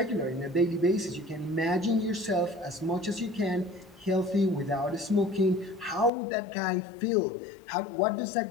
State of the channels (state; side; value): drops out; right; at 6.1 s